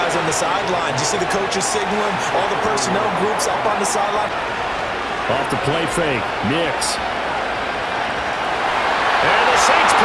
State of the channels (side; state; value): both; identical; correlation 1.00